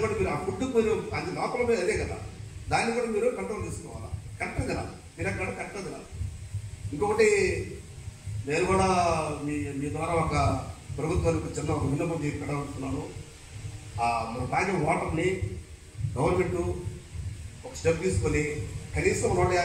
కూడా మీరు ఆ ఫుడ్ మీరు అది లోపల మీద అదే కదా, దాన్ని కూడా మీరు కంట్రోల్ చేసుకోవాలా. కరెక్ట్గా తినాలి, తినక్కడ కరెక్ట్గా తినాలి. ఇంకొకటి నేను కూడా మీ ద్వారా ఒక ప్రభుత్వానికి చిన్న ఒక విన్నపం పెట్టాలనుకున్నాను. మనం తాగే వాటర్ని గవర్నమెంట్ ఒక స్టెప్ తీసుకొని కనీసం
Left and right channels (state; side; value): identical; both; correlation 1.00